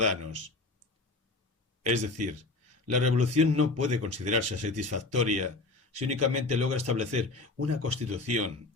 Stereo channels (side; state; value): right; quieter; 3.3 dB